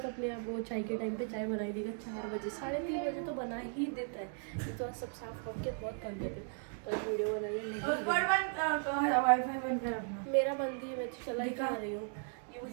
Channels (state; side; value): silent; left; 53 dB below the other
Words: अपने आप वो चाय के टाइम पे चाय बना ही देगा। 4 बजे 3:30 बजे तो बना ही देता है। ये तो आज सब साफ करके बहुत थक गए थे, तो आज वीडियो बनाइए। वाईफाई बंद कर अपना। मेरा बंदी है, मैं तो चला ही खा रही हूँ। ये